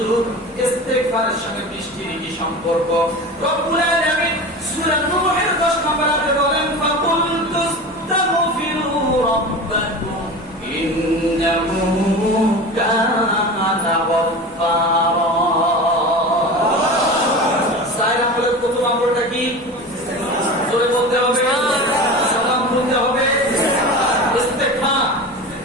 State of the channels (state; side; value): normal; both; correlation 0.31